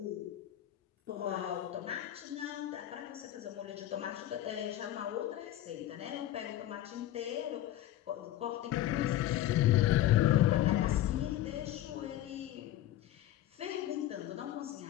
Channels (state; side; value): quieter; right; 13.3 dB